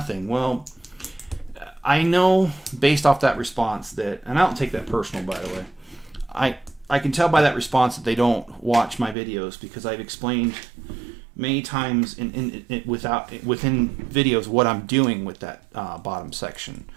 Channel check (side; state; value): left; drops out; at 9.2 s